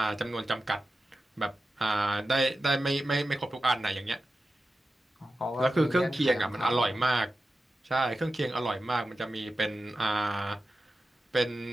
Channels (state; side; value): normal; both; correlation 0.93